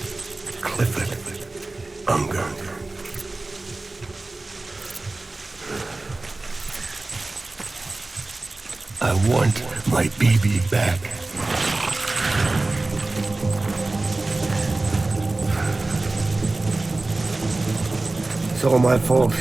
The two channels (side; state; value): left; quieter; 3.1 dB